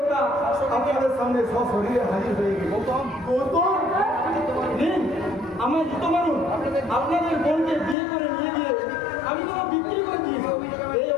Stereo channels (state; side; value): drops out; right; at 8.0 s